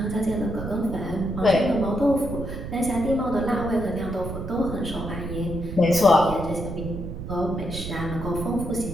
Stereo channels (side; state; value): right; noise; rumble, 8 dB below the sound